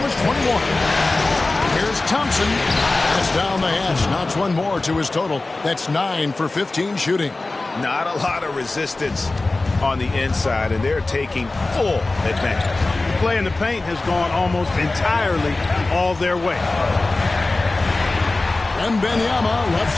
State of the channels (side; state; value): right; quieter; 3.2 dB